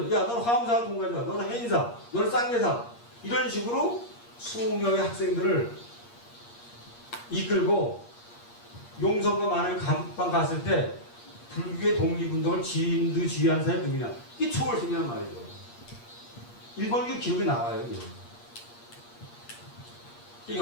야 너는 화엄사 동가자 너는 해인사 너는 쌍계사 이런 식으로 20명의 학생들을 이끌고 용성과 만일 감방 갔을 때 불교의 독립운동을 지휘한 사람이 누구냐 이게 초월스님이란 말이죠. 일본교 기록이 나와요.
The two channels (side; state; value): right; late; 8.5 ms